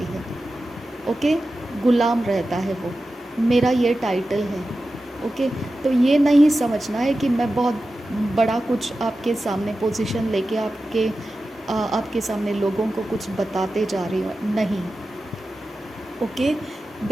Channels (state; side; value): normal; both; correlation 0.93